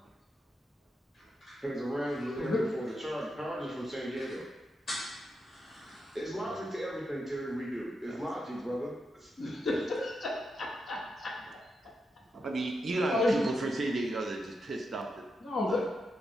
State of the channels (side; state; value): both; normal; correlation 0.85